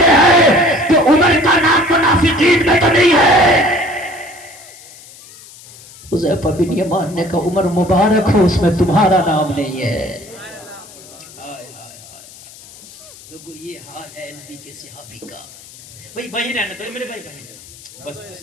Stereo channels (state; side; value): noise; left; hiss, 20 dB below the sound